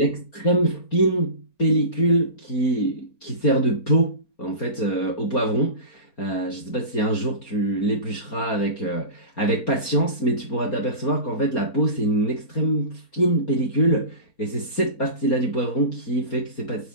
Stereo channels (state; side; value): late; right; 4.3 ms